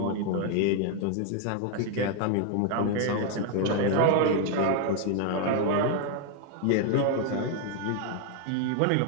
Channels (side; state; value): both; different; correlation 0.00